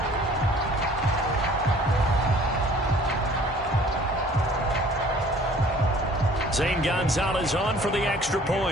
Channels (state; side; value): normal; both; correlation 0.52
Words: Zane Gonzalez on for the extra